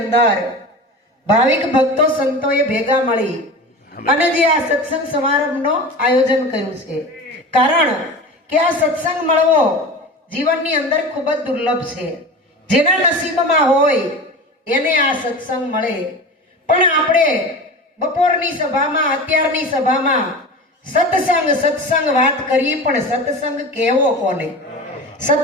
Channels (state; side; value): normal; both; correlation 0.31